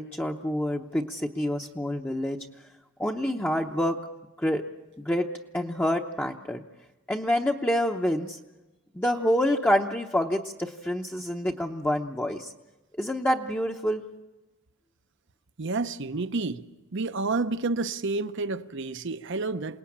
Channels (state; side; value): normal; both; correlation 0.72